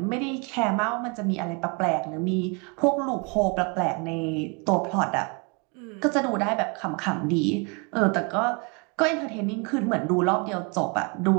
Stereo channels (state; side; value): quieter; left; 32.5 dB